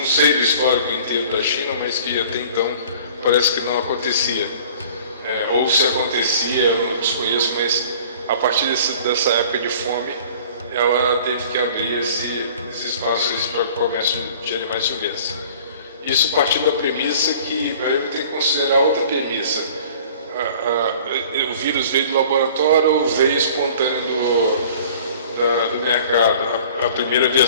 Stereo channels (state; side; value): inverted; both; correlation -0.48